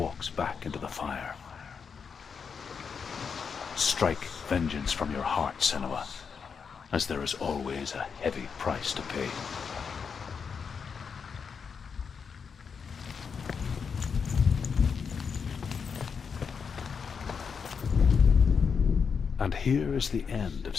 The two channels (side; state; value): right; quieter; 6.1 dB